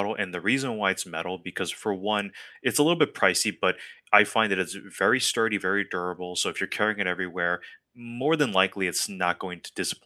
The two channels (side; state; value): both; identical; correlation 1.00